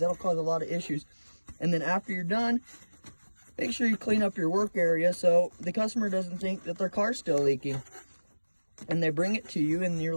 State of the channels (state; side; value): inverted; both; correlation -1.00